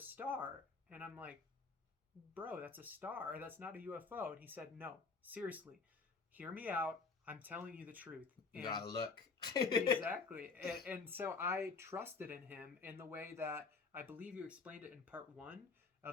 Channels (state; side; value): quieter; right; 4.5 dB